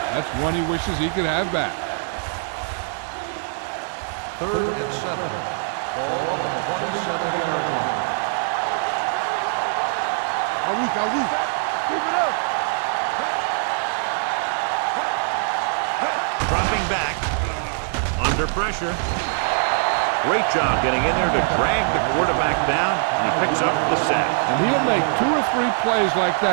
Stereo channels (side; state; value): left; silent; digital silence